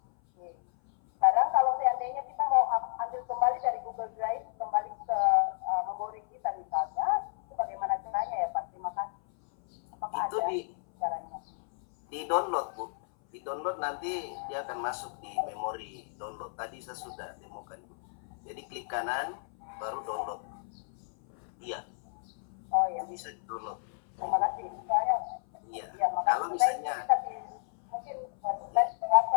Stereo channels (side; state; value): right; silent; 56 dB below the other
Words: Sekarang kalau seandainya kita mau ambil kembali dari Google Drive kembali ke memori kita misalnya, itu bagaimana caranya ya Pak? Terima kasih. Apakah Itu ada caranya? di download Bu, di download nanti dia akan masuk di memori download. Tadi saya sudah demokan Bu. Jadi klik kanan baru download. Iya. Oh ya. Bisa di download. Terima kasih. Saya Iya. ya, makasih. Kalau misalnya Tapi mungkin saya